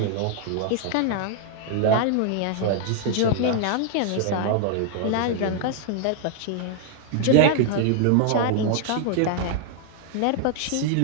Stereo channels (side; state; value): both; different; correlation 0.00